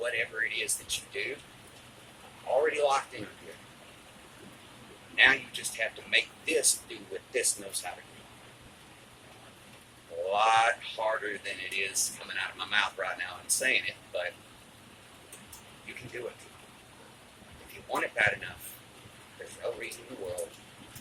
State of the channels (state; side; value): identical; both; correlation 1.00